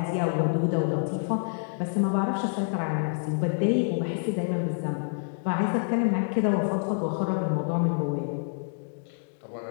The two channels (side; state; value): right; silent; digital silence